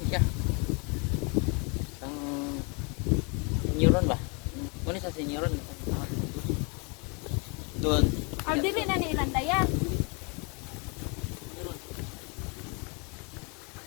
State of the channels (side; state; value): right; quieter; 33.1 dB